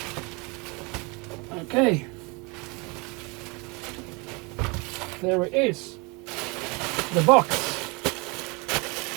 Okay. There it is. The box.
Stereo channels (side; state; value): left; quieter; 28.6 dB